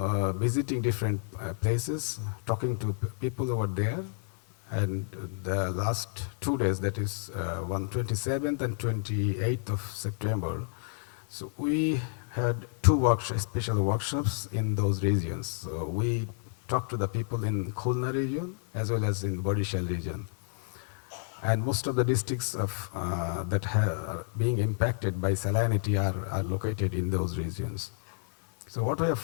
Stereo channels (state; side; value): silent; right; digital silence